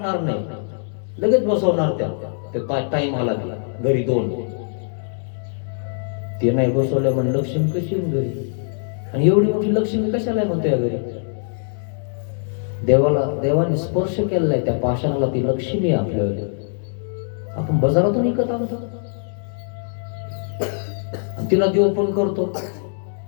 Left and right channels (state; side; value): silent; right; digital silence